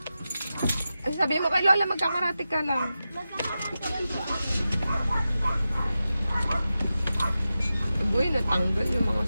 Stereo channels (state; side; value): inverted; both; correlation -0.92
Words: Ay, sabi mo kay Lola, magkakarate ka lang. Boy, natanggal yung mga